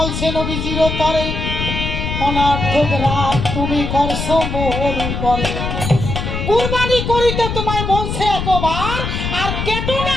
নবীজির তরে, অনার্থক রাত তুমি করছো মোর উপরে। কুরবানি করিতে তোমায় বলছে একবার, আর কেটো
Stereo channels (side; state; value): left; noise; rumble, 3 dB below the sound